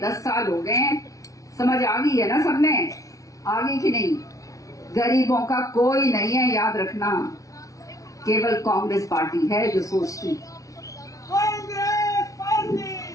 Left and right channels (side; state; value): right; late; 0.16 ms